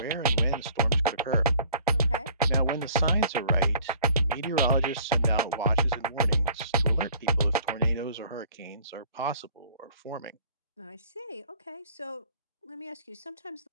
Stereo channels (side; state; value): both; inverted; correlation -0.52